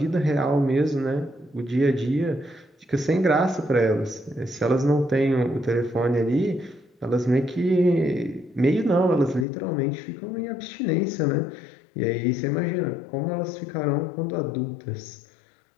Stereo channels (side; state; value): right; drops out; at 9.5 s